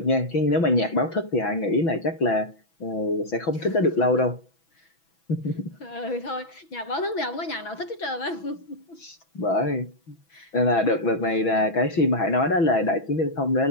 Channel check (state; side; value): late; right; 6.1 ms